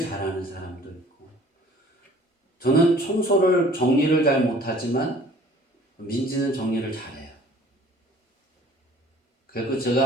사람도 있고, 저는 청소를 정리를 잘 못하지만 민지는 정리를 잘해요. 그리고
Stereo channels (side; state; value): both; normal; correlation 0.52